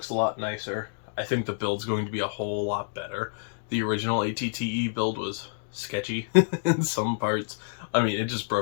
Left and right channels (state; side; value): silent; right; digital silence